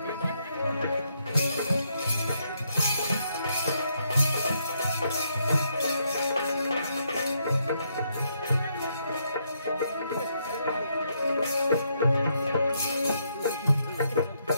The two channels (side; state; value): both; inverted; correlation -0.76